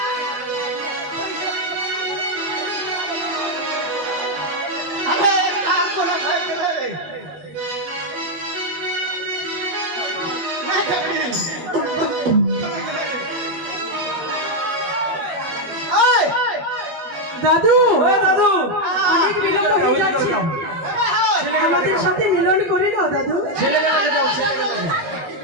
अरे का कोने भाई के रे नहीं खबरी ओए দাদু, ও দাদু, অনেক বিলম্ব হয়ে যাচ্ছে। बाबा हो আমাদের সাথে মিলন করে নাও দাদু। ছেলেবেলাকে দাও, ছেলেবেলাকে।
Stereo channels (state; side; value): late; left; 13 ms